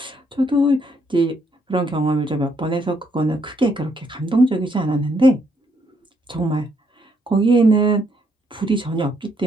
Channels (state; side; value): normal; both; correlation 0.72